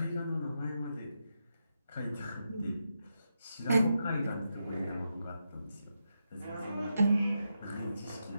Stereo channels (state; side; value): inverted; both; correlation -0.85